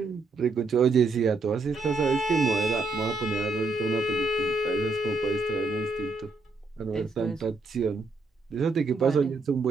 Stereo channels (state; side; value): quieter; left; 3.6 dB